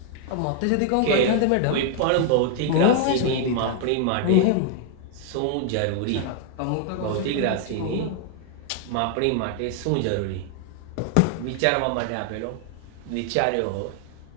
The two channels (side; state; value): both; different; correlation 0.00